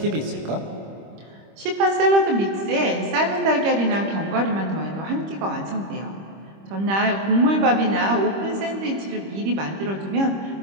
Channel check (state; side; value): late; left; 25 ms